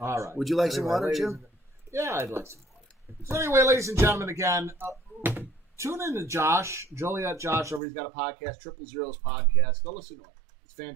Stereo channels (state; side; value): drops out; left; at 7.8 s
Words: right. Would you like some water, Jim? Yeah, I'd like some water. So anyway, ladies and gentlemen, again, tune in to Josh, Joliet Josh, over. He's got a podcast, Triple Zeros Podcast. Go listen to it. It's